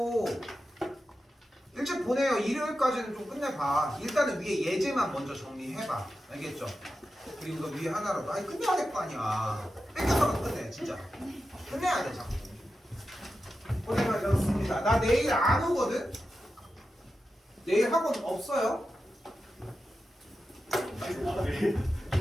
일찍 보내요. 일요일까지는 좀 끝내봐. 일단은 위에 예제만 먼저 정리해봐. 알겠죠? 그리고 너 위에 하나라도 아니 끝내야 될 거 아니야. 뺏겨서라도 끝내. 진짜 끝내야 돼 자꾸. 고생하셨습니다. 나 내일 안 오거든? 내일 학원 없어요.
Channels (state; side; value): normal; both; correlation 0.91